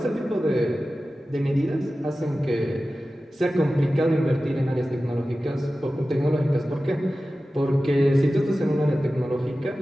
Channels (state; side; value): normal; both; correlation 0.95